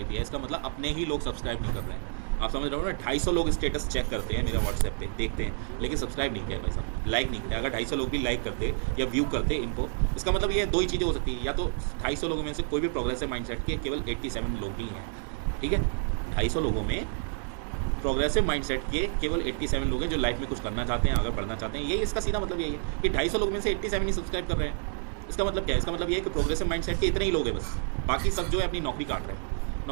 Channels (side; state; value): left; silent; 59 dB below the other